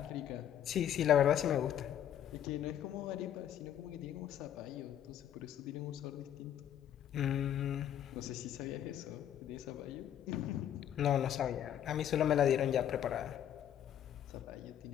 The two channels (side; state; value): right; quieter; 10.4 dB